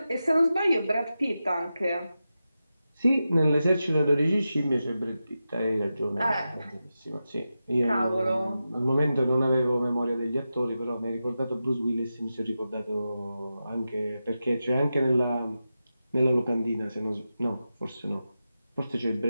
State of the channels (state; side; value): inverted; both; correlation -0.91